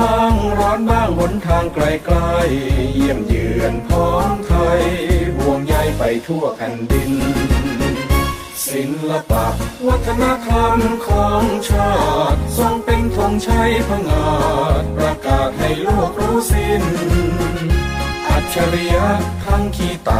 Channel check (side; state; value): both; identical; correlation 1.00